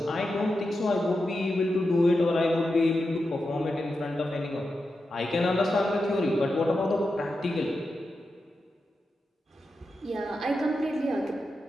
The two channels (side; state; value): both; normal; correlation 0.89